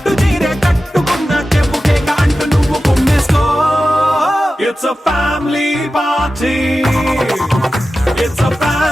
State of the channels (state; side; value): normal; both; correlation 0.93